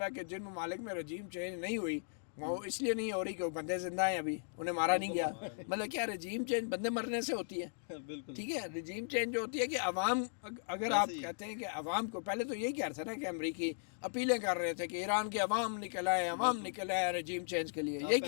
ہے کہ جن ممالک میں رجیم چینج نہیں ہوئی وہ اس لیے نہیں ہو رہی کہ وہ بندے زندہ ہیں, ابھی انہیں مارا نہیں گیا. مطلب کیا رجیم چینج بندے مرنے سے ہوتی ہے؟ ٹھیک ہے, رجیم چینج جو ہوتی ہے کہ عوام, اگر آپ کہتے ہیں کہ عوام کو, پہلے تو یہی کہہ رہا تھا نا کہ امریکی اپیلیں کر رہے تھے کہ ایران کے عوام نکل آئے رجیم چینج کے لیے, یہی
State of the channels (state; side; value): silent; right; digital silence